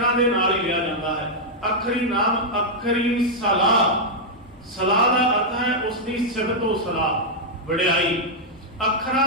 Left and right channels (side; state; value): both; normal; correlation -0.04